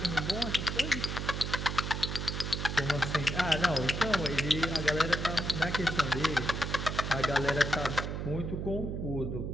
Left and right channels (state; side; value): noise; right; hum, 3 dB below the sound